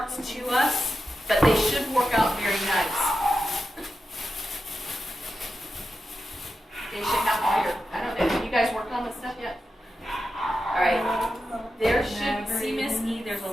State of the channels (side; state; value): both; normal; correlation 0.90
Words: to us, but they should work out very nice. They should have all your, I don't know, have you guys worked on this stuff yet? Alright. There should, see Miss E, there's a